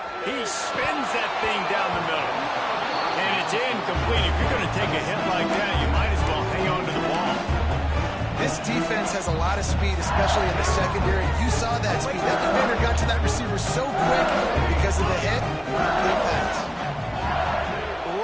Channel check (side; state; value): both; identical; correlation 1.00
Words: He spins that thing down the middle. And it's incomplete. If you're going to take a hit like that, you might as well hang on to the ball. This defense has a lot of speed, especially in the secondary. You saw that speed. That defender got to that receiver so quick because of the hit. Complete pass.